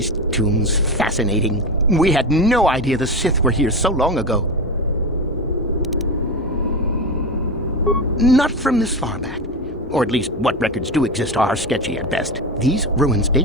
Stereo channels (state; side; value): normal; both; correlation 0.20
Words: tombs fascinating? We had no idea the Sith were here so long ago. Not from this far back. Or at least what records do exist are sketchy at best. These ruins